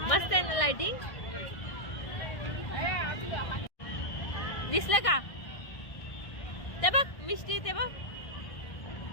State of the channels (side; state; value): right; late; 1.6 ms